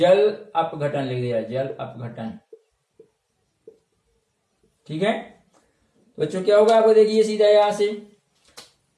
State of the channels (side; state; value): both; identical; correlation 1.00